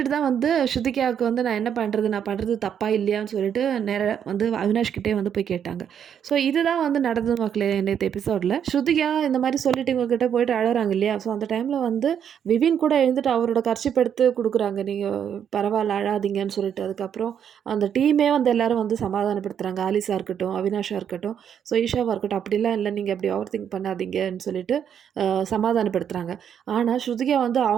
தான் வந்து ஸ்ருதிகாவுக்கு வந்து நான் என்ன பண்ணுறது, நான் பண்ணுறது தப்பா இல்லையான்னு சொல்லிட்டு நேராக வந்து அவினாஷ் கிட்டே வந்து போய் கேட்டாங்க. ஸோ இதுதான் வந்து நடந்தது மக்களே நேற்று எபிசோடில். ஸ்ருதிகா இந்த மாதிரி சொல்லிட்டு இவங்ககிட்ட போயிட்டு அழறாங்க இல்லையா. ஸோ அந்த டைமில் வந்து விவின் கூட எழுந்துட்டு அவரோட கர்ச்சிப் எடுத்து கொடுக்குறாங்க, நீங்கள் பரவாயில்ல அழாதீங்கன்னு சொல்லிட்டு. அதுக்கப்புறம் அந்த டீமே வந்து எல்லாரும் வந்து சமாதானப்படுத்துகிறாங்க. ஆலிஸா இருக்கட்டும், அவினாஷா இருக்கட்டும், ஸோ ஈஷாவாக இருக்கட்டும், அப்படிலாம் இல்லை, நீங்கள் அப்படி ஓவர் திங்க் பண்ணாதீங்கன்னு சொல்லிட்டு சமாதானப்படுத்துகிறாங்க. ஆனால் ஸ்ருதிகா வந்து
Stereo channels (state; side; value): quieter; left; 8.5 dB